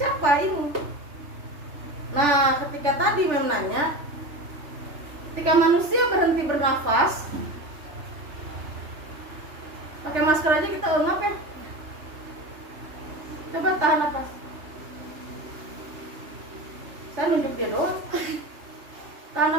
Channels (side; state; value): left; late; 3.4 ms